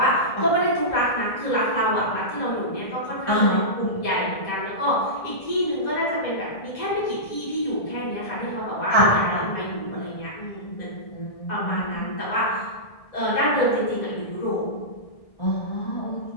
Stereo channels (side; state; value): right; late; 1.6 ms